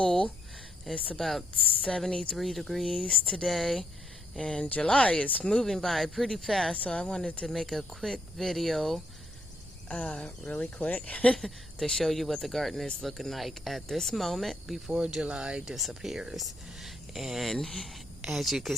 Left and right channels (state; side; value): normal; both; correlation 0.75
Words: It's about 73 degrees today, and July is moving by pretty fast, so I wanted to make a quick video, really quick, to show you what the garden is looking like at this moment before July disappears. And as you can